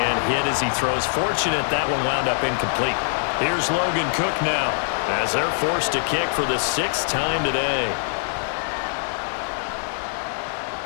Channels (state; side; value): silent; right; 63 dB below the other